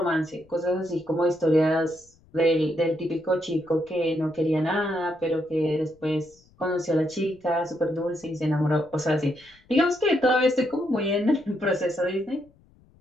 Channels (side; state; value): left; noise; rumble, 30 dB below the sound